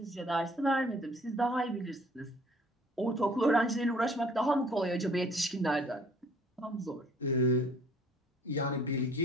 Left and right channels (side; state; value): both; normal; correlation 0.55